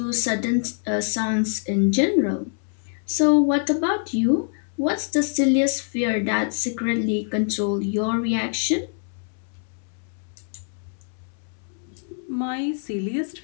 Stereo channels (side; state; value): right; silent; 62 dB below the other